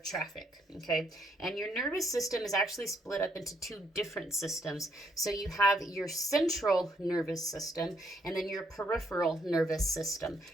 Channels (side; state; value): both; normal; correlation 0.72